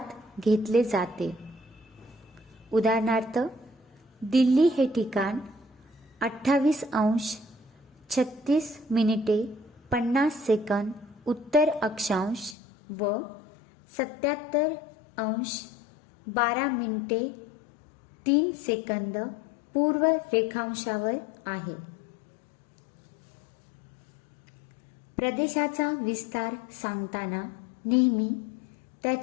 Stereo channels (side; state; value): right; drops out; at 12.6 s